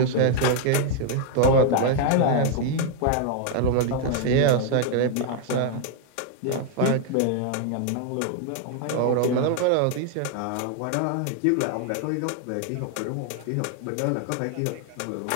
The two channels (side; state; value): both; different; correlation 0.00